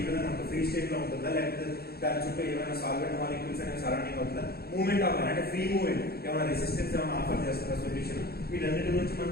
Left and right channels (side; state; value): right; late; 0.46 ms